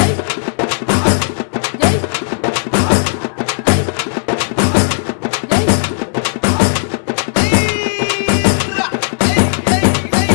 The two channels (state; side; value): silent; right; digital silence